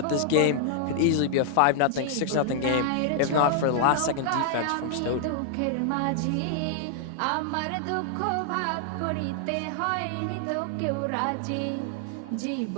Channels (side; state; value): both; different; correlation 0.00